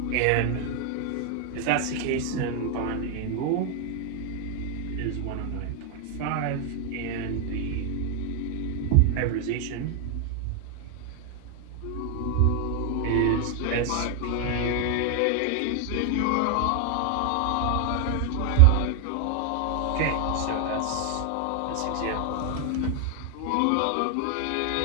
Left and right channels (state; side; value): different; both; correlation 0.00